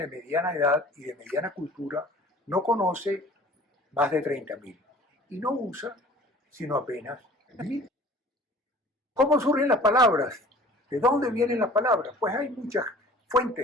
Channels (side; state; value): both; normal; correlation 0.47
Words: mediana edad y de mediana cultura no conoce más de 30.000 y no usa sino apenas 1.000. ¿Cómo surgen las palabras? ¿De dónde vienen las palabras? Pues hay muchas